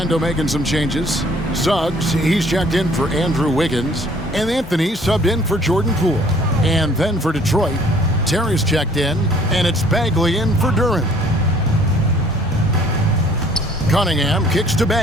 making some changes. Suggs, he's checked in for Andrew Wiggins. And Anthony subbed in for Jordan Poole. And then for Detroit, Terry's checked in. And it's Bagley in for Duran. Cunningham kicks to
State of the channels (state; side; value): normal; both; correlation 0.57